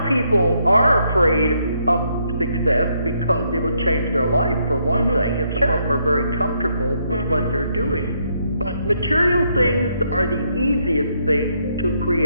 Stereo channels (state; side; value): inverted; both; correlation -0.74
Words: people are afraid of success because it will change their life, for one thing, and some of them are very comfortable with what they're doing. But material things are the easiest thing to